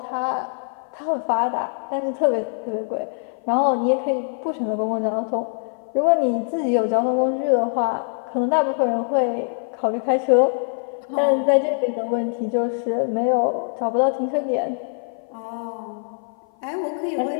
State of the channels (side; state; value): right; silent; 56 dB below the other